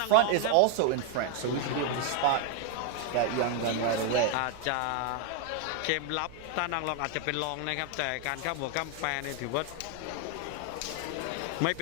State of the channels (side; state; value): both; different; correlation 0.01